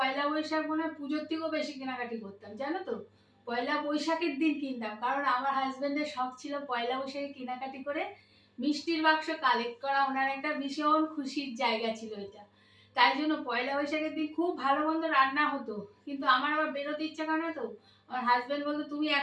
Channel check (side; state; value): both; identical; correlation 1.00